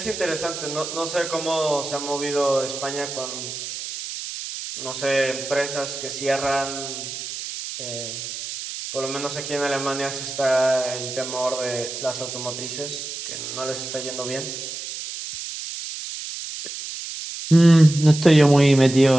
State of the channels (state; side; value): noise; right; hiss, 8 dB below the sound